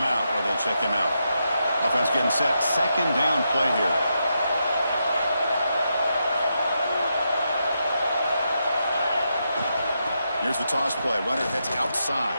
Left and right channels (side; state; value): both; inverted; correlation -0.84